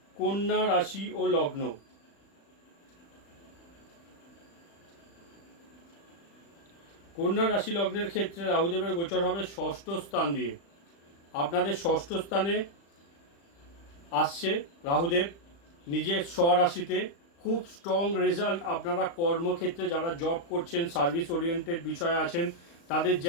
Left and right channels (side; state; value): right; late; 35 ms